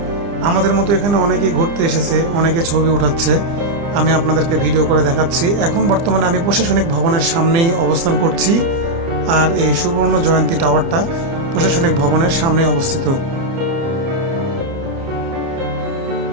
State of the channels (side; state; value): left; late; 30 ms